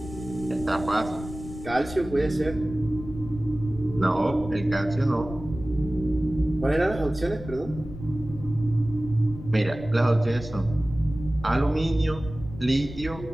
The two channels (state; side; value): noise; left; rumble, 12 dB below the sound